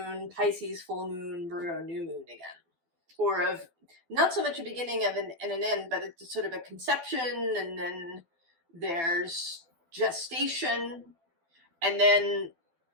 Pisces full moon, Virgo new moon again. Or of not so much a beginning of and an end, but it's sort of a conception, and then there's gestation, and then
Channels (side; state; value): left; late; 12 ms